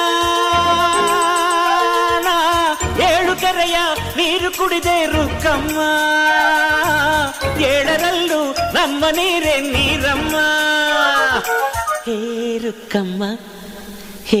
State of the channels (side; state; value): both; identical; correlation 1.00